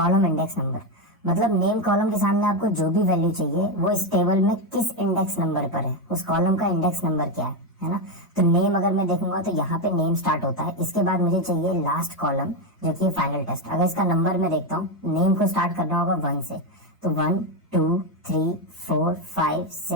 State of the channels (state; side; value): normal; both; correlation 0.08